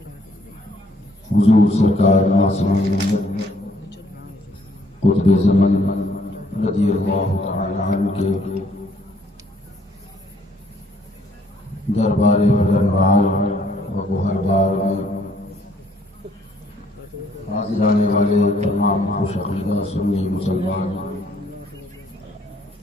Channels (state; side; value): normal; both; correlation 0.65